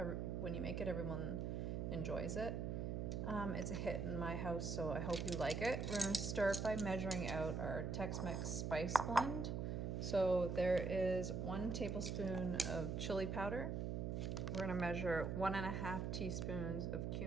when you make it, everyone enjoys it. It's a hit in my house, so I hope you like it. We're gonna start by measuring out our Tex Mex spice blend. So there is 1 tablespoon of chili powder. We're gonna measure 1.5 teaspoons of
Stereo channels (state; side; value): noise; right; hum, 1 dB below the sound